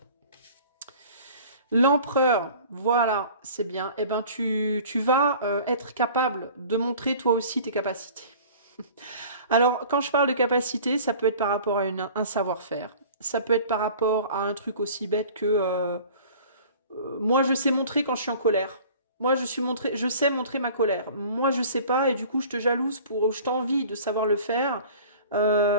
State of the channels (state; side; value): inverted; both; correlation -0.45